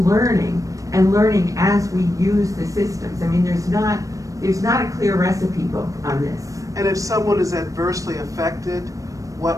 and learning as we use the systems. I mean, there's not a clear recipe book on this. And if someone is adversely affected,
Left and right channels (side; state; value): left; late; 0.16 ms